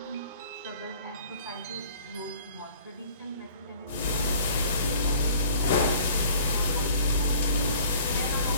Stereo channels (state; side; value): inverted; both; correlation -0.51